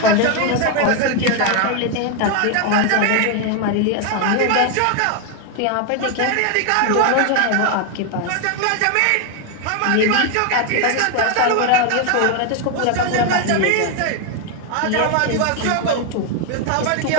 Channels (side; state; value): both; different; correlation 0.01